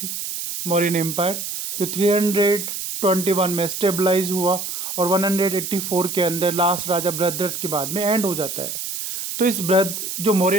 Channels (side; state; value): right; noise; hiss, 5 dB below the sound